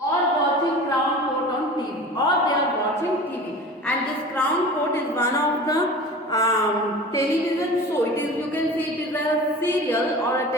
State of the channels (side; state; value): both; normal; correlation 0.37